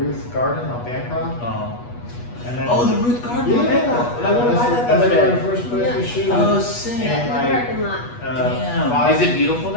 Garden on Bancroft, and then Oh, the Ruth Garden. yeah, on Bancroft. I want to buy that the that's other where day. the first place we Yeah. shoot. Oh, sick. Yeah, in the like, parking lot. Damn. Is it beautiful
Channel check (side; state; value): right; late; 8.3 ms